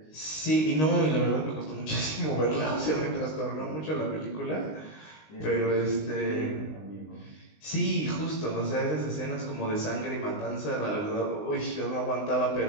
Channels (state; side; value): late; right; 19 ms